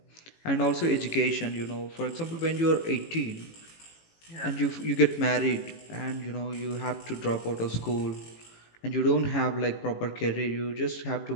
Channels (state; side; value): late; right; 18 ms